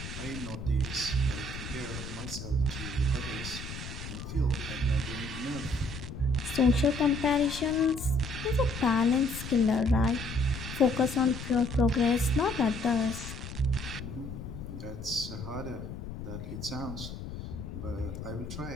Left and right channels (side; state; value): left; noise; rumble, 9 dB below the sound